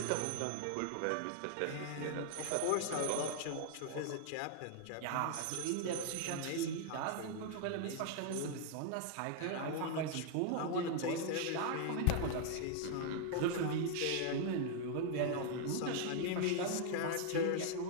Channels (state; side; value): different; both; correlation 0.00